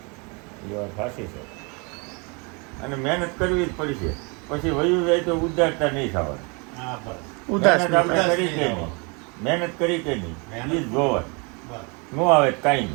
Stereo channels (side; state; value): left; quieter; 31.4 dB